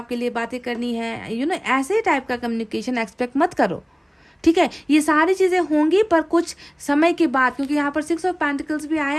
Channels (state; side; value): identical; both; correlation 1.00